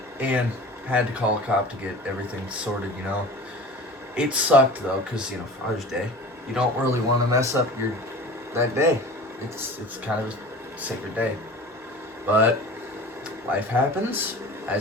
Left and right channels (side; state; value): both; normal; correlation 0.39